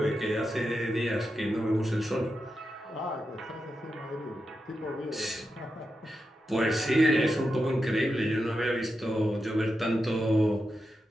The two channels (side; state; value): both; normal; correlation 0.88